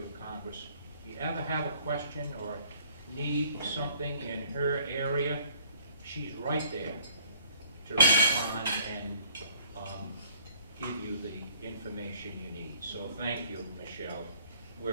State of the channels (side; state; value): both; inverted; correlation -0.59